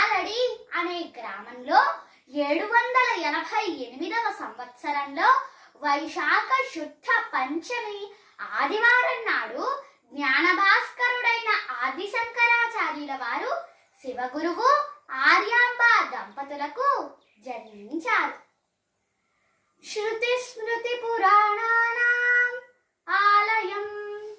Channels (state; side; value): identical; both; correlation 1.00